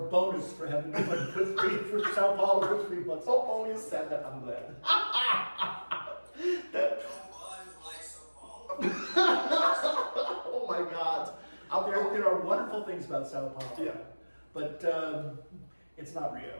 bonus for having been for Sao Paulo for 3 months. Oh, you said that, I'm glad. Nobody likes São Paulo. Oh my God. There are wonderful things about Sao Paulo. Yeah, But it's not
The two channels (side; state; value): both; inverted; correlation -1.00